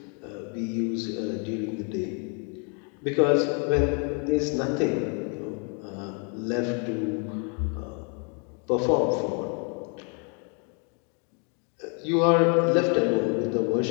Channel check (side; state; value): right; quieter; 38.4 dB